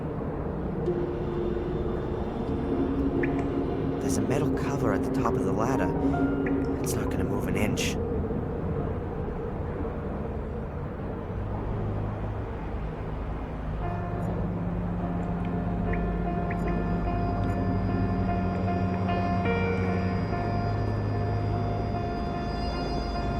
There's a metal cover at the top of the ladder. It's not gonna move an inch.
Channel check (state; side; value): identical; both; correlation 1.00